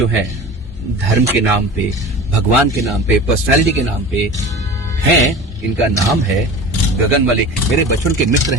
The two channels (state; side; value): normal; both; correlation 0.36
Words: हैं धर्म के नाम पे, भगवान के नाम पे, पर्सनालिटी के नाम पे हैं, इनका नाम है गगन मलिक। मेरे बचपन के मित्र